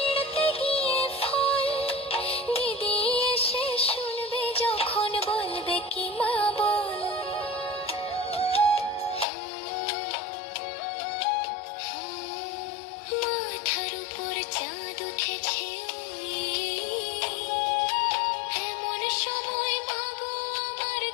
গিয়ে ফল দিদি এসে শুনবে যখন বলবে কি মা বল মাথার উপর চাঁদ উঠেছে ওই এমন সময় মাগো আমার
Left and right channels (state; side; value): drops out; right; at 9.2 s